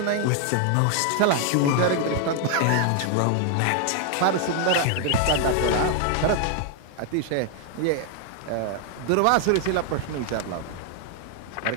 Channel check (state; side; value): different; both; correlation 0.00